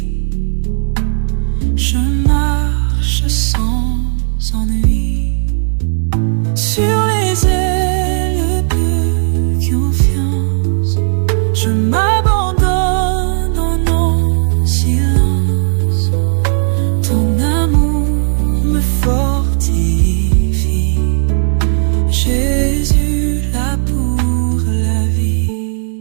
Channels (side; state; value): left; silent; digital silence